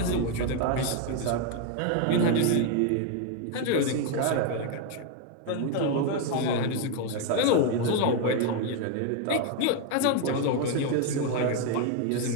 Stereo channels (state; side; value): different; both; correlation 0.01